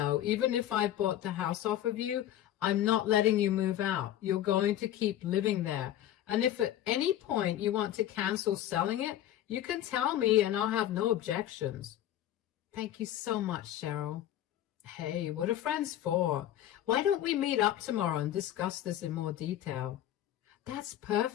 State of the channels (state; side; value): quieter; right; 12.2 dB